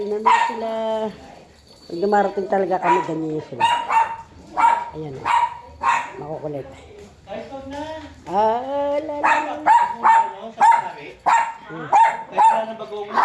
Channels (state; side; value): identical; both; correlation 1.00